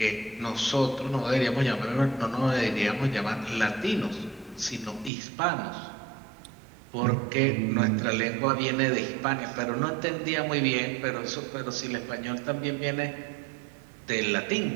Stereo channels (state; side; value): drops out; left; at 5.1 s